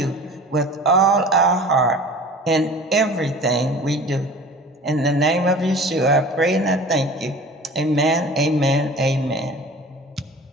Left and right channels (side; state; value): both; normal; correlation 0.41